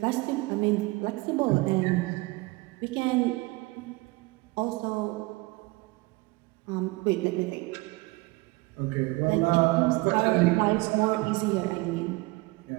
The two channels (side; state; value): left; quieter; 23.3 dB